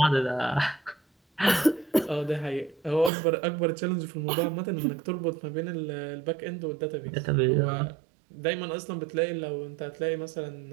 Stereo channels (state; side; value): drops out; left; at 3.1 s